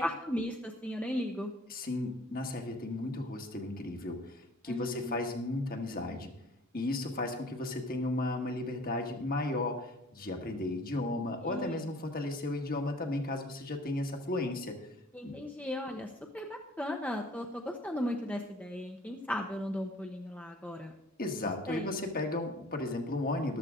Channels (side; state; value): both; normal; correlation 0.51